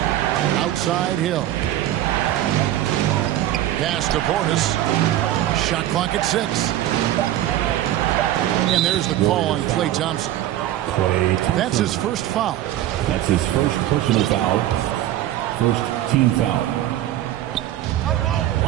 Outside Hill. Pass to Portis. Shot clock at 6. And there's the call on Klay Thompson. That's his first foul. That's his first personal foul. First team foul.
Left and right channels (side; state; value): left; quieter; 13.3 dB